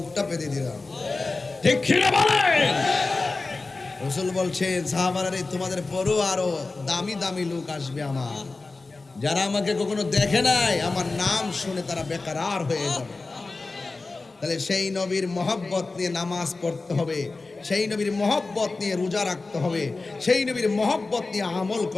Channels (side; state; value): right; quieter; 3.6 dB